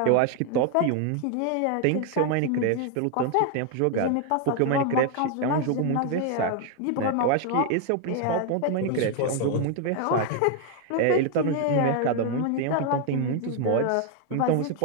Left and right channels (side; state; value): both; different; correlation 0.01